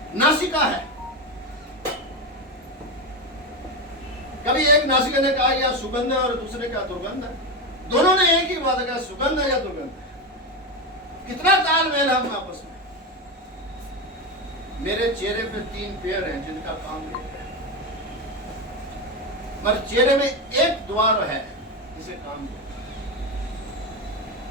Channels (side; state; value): both; normal; correlation 0.15